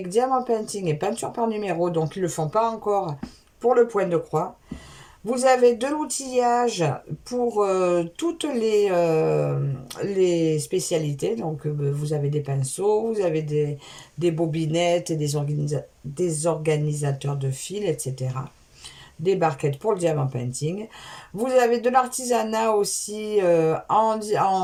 diamant painting et peinture par numéro, donc ils ne le font pas encore pour le point de croix. Vous avez de l'outillage pour toutes les spécialités. Donc vous avez des pinceaux, vous avez des bobinettes, et des organisateurs de fils, etc. Des barquettes pour le diamant painting. Vous avez de l'artisanat aussi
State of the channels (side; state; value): both; identical; correlation 1.00